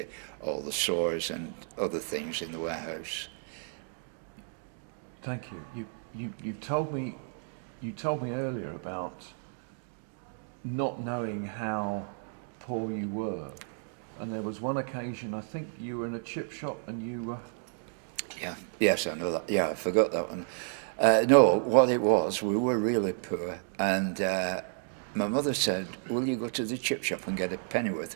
all the stores and other things in the warehouse. Thank you. You told me earlier about not knowing how poor you were, and there was one occasion, I think you were in a chip shop and you were... Yeah, yes, I know that. Yeah, I forgot that one. No, what it was, we were really poor, and my mother said, will you go to the chip shop and get a pennyworth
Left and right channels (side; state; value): left; silent; 57 dB below the other